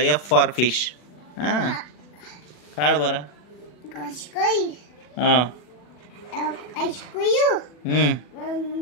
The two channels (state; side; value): late; right; 40 ms